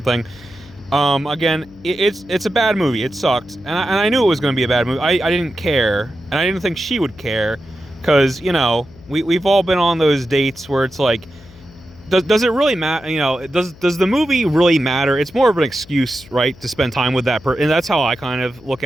Again, it's a bad movie. It sucked, and I knew it was going to be a bad movie. I didn't care, and I didn't think she would care, because we've all been on those dates where it's like, does it really matter? Does the movie really matter? It's more of an excuse, right, to spend time with that person, and that's how I kind of look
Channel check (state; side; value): noise; left; hum, 23 dB below the sound